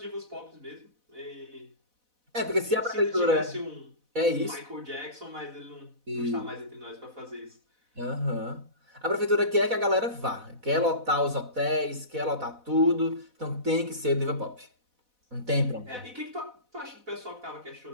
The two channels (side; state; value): left; late; 4.1 ms